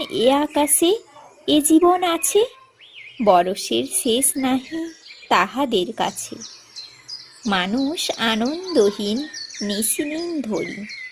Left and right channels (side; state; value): both; identical; correlation 1.00